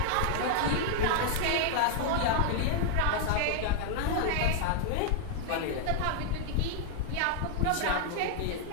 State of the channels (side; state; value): both; different; correlation 0.00